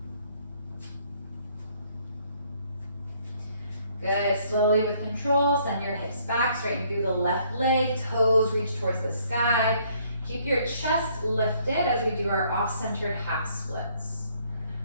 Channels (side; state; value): both; inverted; correlation -0.65